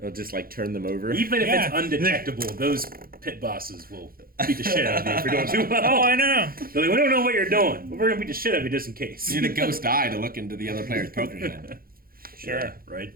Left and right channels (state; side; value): late; left; 0.42 ms